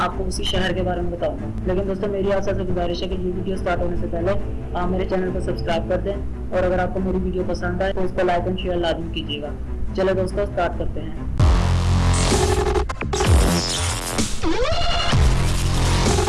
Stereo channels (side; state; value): both; identical; correlation 1.00